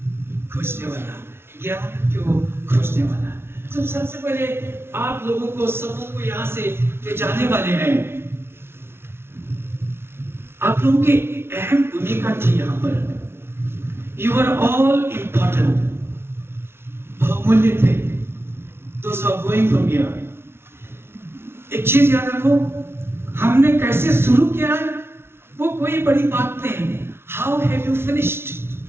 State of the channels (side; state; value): left; late; 0.12 ms